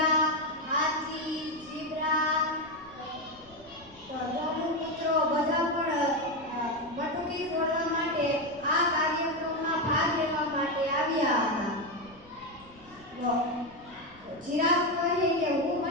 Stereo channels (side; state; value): left; noise; rumble, 25 dB below the sound